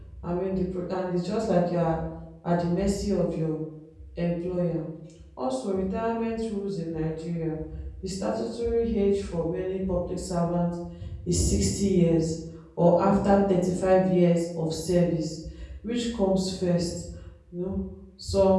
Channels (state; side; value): identical; both; correlation 1.00